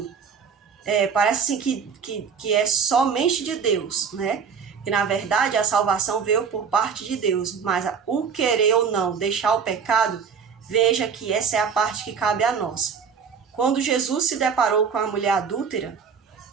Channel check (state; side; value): quieter; left; 6.4 dB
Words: parece assim que é somente de Deus, né? Que na verdade a salvação veio por parte de Deus, mas o querer ou não deixar o pecado, veja que essa é a parte que cabe a nós. Quando Jesus se deparou com a mulher adúltera,